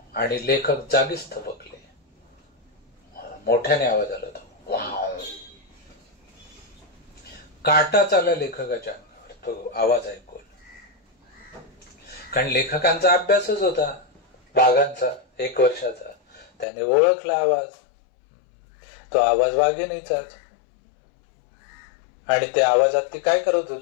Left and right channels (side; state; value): right; drops out; at 16.7 s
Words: आणि लेखक जागीच थबकले. मोठ्याने आवाज आला तो, वाव. काटा चालला लेखकाच्या अंगावर तो आवाज ऐकून. कारण लेखकांचा अभ्यासच होता वाघांचा 1 वर्षाचा. त्याने ओळखला आवाज. तो आवाज वाघिणीचाच. आणि त्या आवाजात ती काय करत